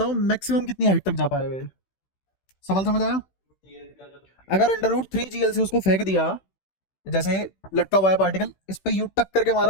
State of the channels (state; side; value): late; right; 16 ms